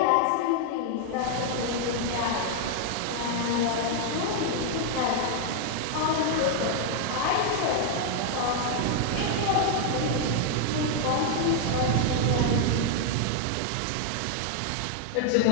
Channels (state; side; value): different; both; correlation 0.00